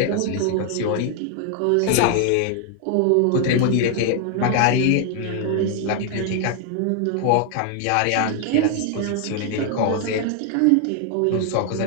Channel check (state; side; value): different; both; correlation 0.00